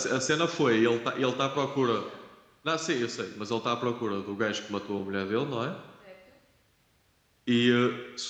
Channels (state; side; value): identical; both; correlation 1.00